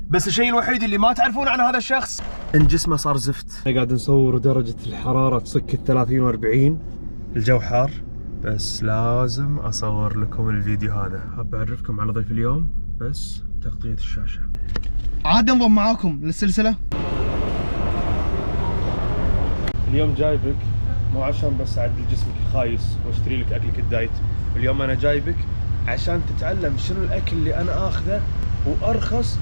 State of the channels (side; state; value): both; inverted; correlation -1.00